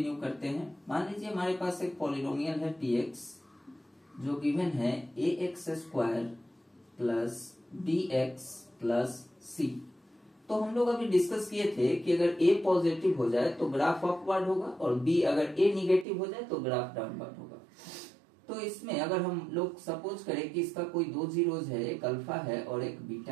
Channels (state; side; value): drops out; left; at 16.1 s